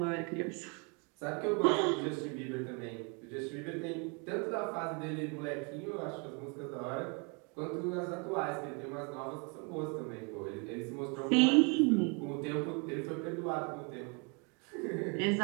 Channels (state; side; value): quieter; left; 33.9 dB